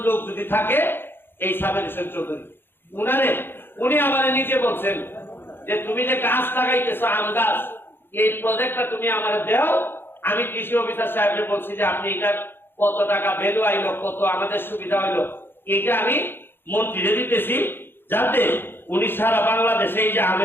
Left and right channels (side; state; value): right; late; 0.10 ms